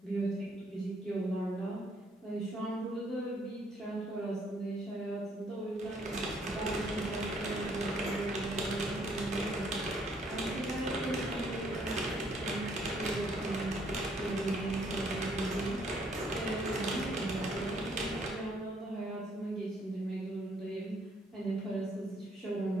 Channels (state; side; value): normal; both; correlation 0.67